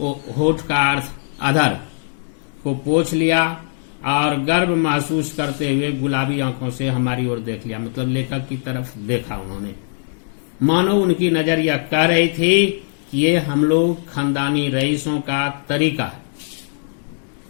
होठ का अर्थ अधर को पोंछ लिया और गर्व महसूस करते हुए गुलाबी आंखों से हमारी ओर देख लिया। मतलब लेखक की तरफ देखा उन्होंने, मानो उनकी नजर यह कह रही थी कि ये हम लोग खानदानी रईसों का तरीका है।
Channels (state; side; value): silent; right; 66 dB below the other